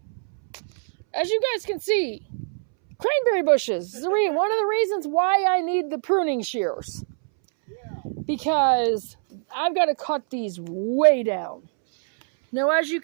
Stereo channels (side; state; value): left; silent; 63 dB below the other